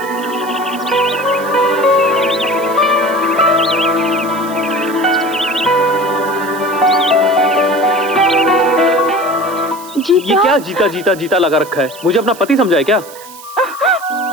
ये क्या जीता जीता जीता लगा रखा है? मुझे अपना पति समझा है क्या?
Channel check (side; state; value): right; noise; hiss, 18 dB below the sound